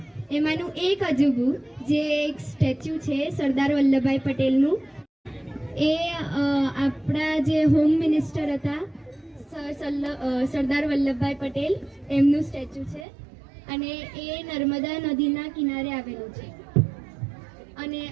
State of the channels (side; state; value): left; drops out; at 13.1 s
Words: એમાંનું એક અજુબું જે એક સ્ટેચ્યુ છે સરદાર વલ્લભભાઈ પટેલનું, એ આપણા જે હોમ મિનિસ્ટર હતા સરદાર વલ્લભભાઈ પટેલ, એમનું સ્ટેચ્યુ છે અને એ નર્મદા નદીના કિનારે આવેલું છે. અને